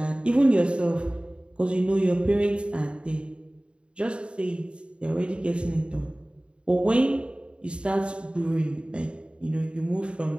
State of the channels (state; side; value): late; left; 0.056 ms